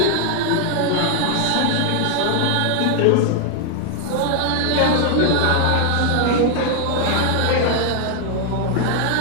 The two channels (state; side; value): different; both; correlation 0.00